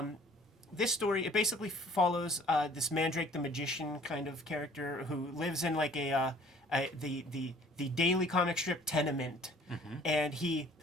This story, it basically follows this Mandrake the Magician kind of character who lives in like the daily comic strip tenement, mm-hmm. and he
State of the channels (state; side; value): normal; both; correlation 0.54